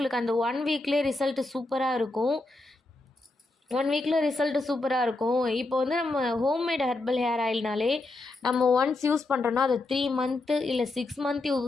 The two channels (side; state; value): right; quieter; 3.0 dB